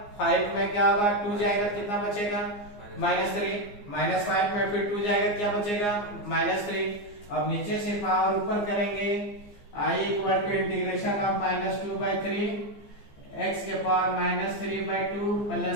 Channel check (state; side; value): late; right; 15 ms